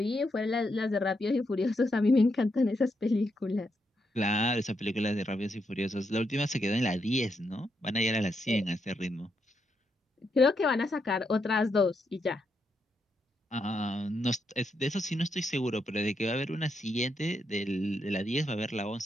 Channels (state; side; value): normal; both; correlation 0.81